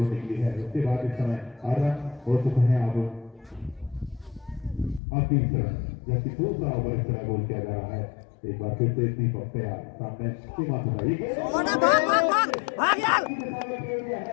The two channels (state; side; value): drops out; right; at 5.0 s